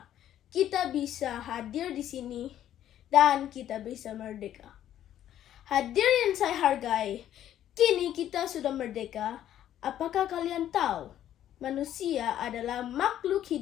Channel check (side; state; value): right; quieter; 11.5 dB